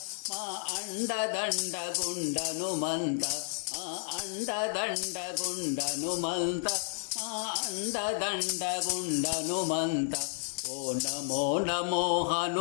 మా అండదండ గుండనుమంత మా అండదండ గుండనుమంత మా అండదండ గుండనుమంత. ఓ నమో నమో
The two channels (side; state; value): right; silent; digital silence